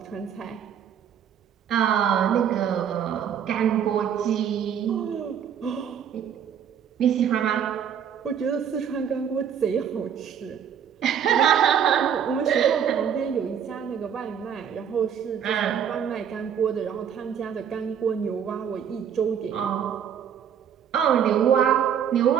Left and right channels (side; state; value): left; quieter; 8.4 dB